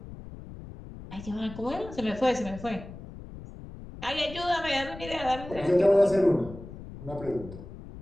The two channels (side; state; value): left; noise; rumble, 14 dB below the sound